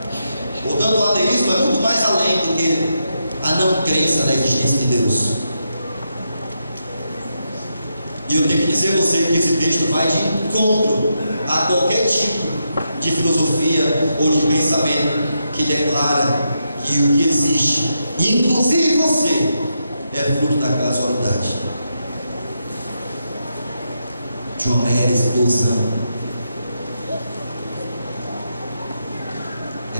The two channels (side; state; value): both; inverted; correlation -0.84